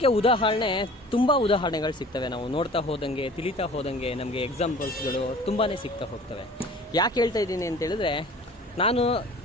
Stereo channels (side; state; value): both; normal; correlation 0.45